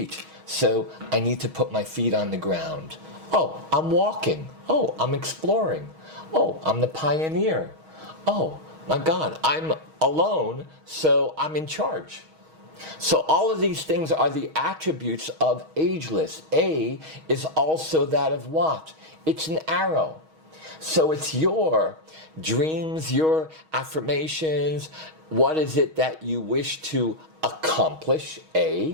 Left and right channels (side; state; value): left; late; 6.3 ms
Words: So I need to put my feet on the ground. Oh, I'm walking. Oh, I'm exploring. Oh, I'm the pioneer. Oh, my God, I'm alone, so I'm in charge. So all of these things are the attributes of ageless. A is also that of what? It's an arrow. So it's your dreams, your affirmations. What is it that you wish to accomplish?